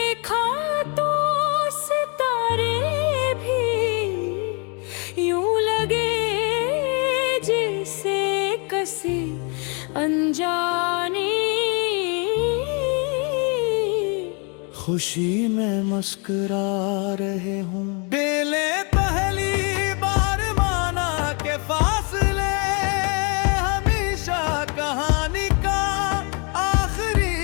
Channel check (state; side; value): quieter; right; 34.6 dB